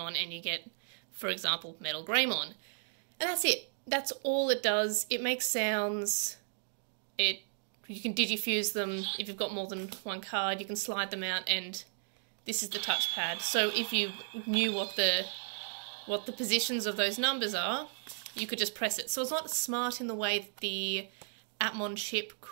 and you get, for example, Metal Greymon. And that's it. That's all it does. It makes sounds. You can digifuse them. If you've got more than one card, you can slide them out, and this is the touchpad. So if you knew what the positions of those numbers are, you could just press it. So it's not smart in the way that the Atmon chip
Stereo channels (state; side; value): silent; left; digital silence